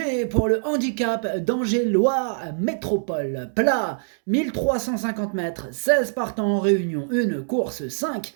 pour le handicap d'Angers-Loire Métropole. Plat, 1350 mètres, 16 partants en réunion, une course 5,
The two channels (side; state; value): left; silent; digital silence